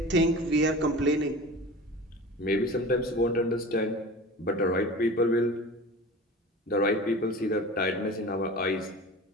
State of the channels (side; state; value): both; normal; correlation 0.36